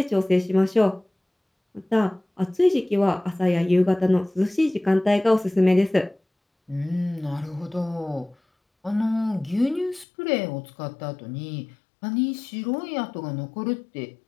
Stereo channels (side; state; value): right; drops out; at 10.1 s